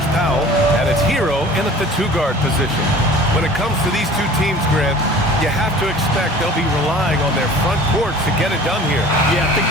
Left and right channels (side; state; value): both; normal; correlation 0.45